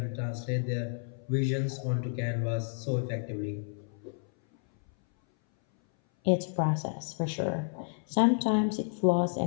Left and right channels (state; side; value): silent; right; 57 dB below the other